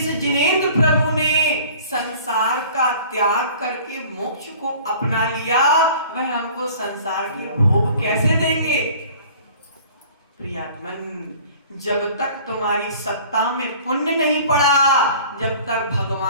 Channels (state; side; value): inverted; both; correlation -0.48